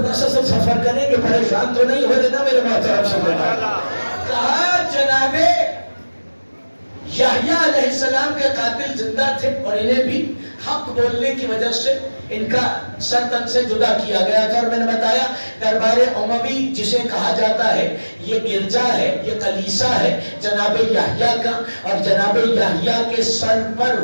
سا سب سفر کریں گے، پریشان تو نہیں ہو دینا میرے محترم سمجھنا. کہا جناب یحییٰ علیہ السلام کے قاتل زندہ تھے اور انہیں بھی حق بولنے کی وجہ سے ان کا سر تن سے جدا کیا گیا تھا. اور میں نے بتایا دربار اموی جسے کہا جاتا ہے یہ گرجا ہے، یہ کلیسا ہے جناب یحییٰ کا، اور جناب یحییٰ کے سر پر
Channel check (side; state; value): both; inverted; correlation -1.00